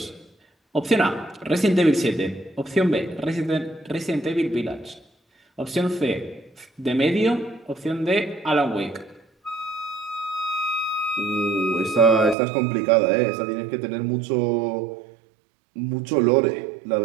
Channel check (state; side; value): drops out; left; at 12.4 s